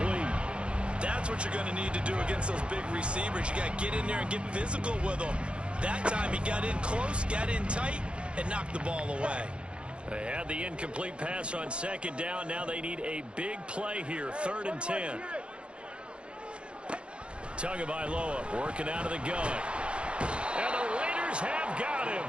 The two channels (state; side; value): late; left; 0.058 ms